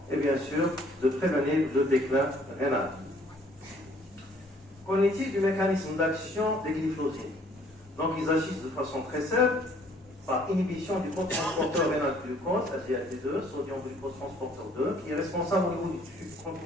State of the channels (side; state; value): both; normal; correlation 0.60